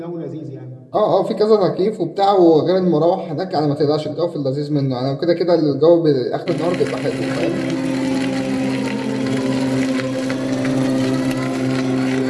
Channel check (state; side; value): identical; both; correlation 1.00